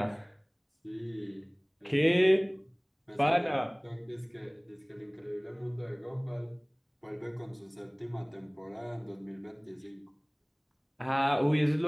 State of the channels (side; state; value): both; identical; correlation 1.00